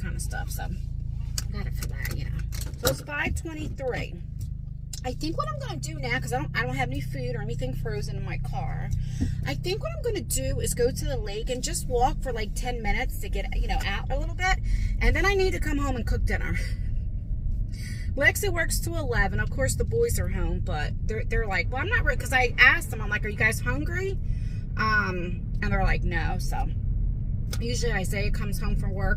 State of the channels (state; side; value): identical; both; correlation 1.00